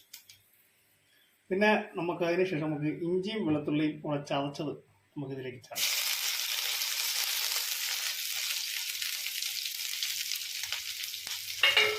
പിന്നെ നമുക്ക് അതിനുശേഷം നമുക്ക് ഇഞ്ചിയും വെളുത്തുള്ളിയും കൂടെ ചതച്ചത് നമുക്കിതിലേക്ക് ചേർക്കാം.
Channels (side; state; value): both; identical; correlation 1.00